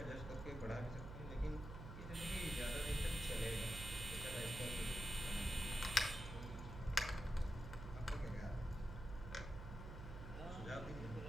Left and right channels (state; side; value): noise; right; hum, 8 dB below the sound